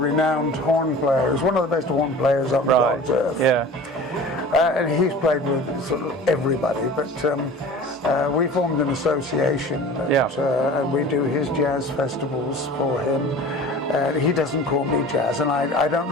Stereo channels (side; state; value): both; normal; correlation 0.40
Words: horn player. He's one of the best horn players on God's earth. Yeah. And he's played with sort of everybody, but we formed an association and we do his jazz festivals for him. He doesn't call me jazz, and I don't